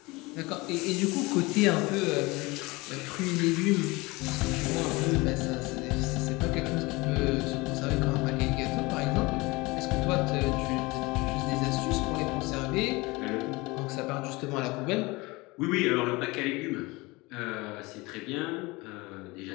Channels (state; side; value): quieter; right; 23.5 dB